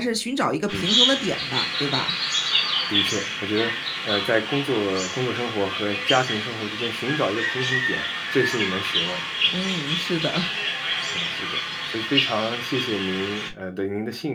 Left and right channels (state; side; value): identical; both; correlation 1.00